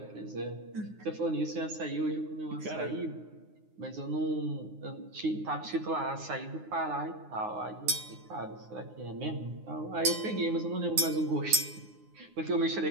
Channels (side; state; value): left; late; 9.6 ms